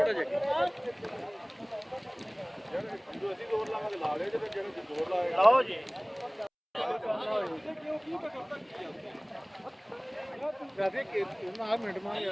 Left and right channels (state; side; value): identical; both; correlation 1.00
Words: जगे लाओ जी